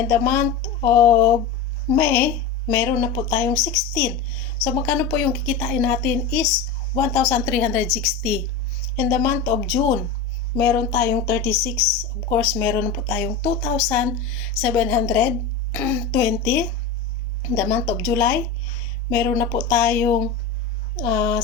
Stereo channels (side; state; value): right; quieter; 5.2 dB